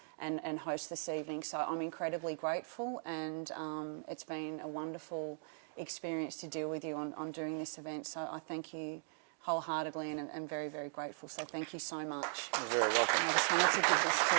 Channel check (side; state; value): left; silent; digital silence